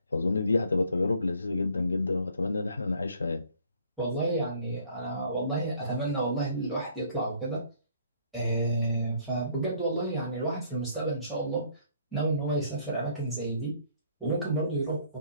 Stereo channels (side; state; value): both; inverted; correlation -0.60